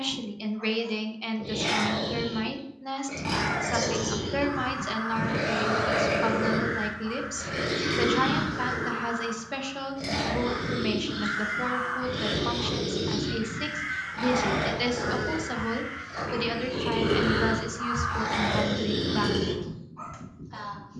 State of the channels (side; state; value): both; identical; correlation 1.00